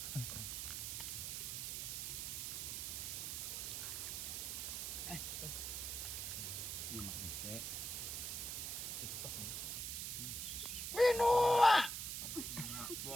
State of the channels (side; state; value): right; noise; hiss, 3 dB below the sound